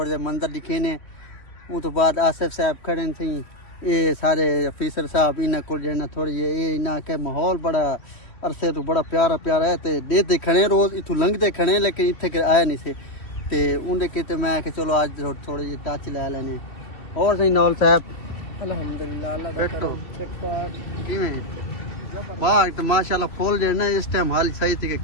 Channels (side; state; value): right; late; 3.1 ms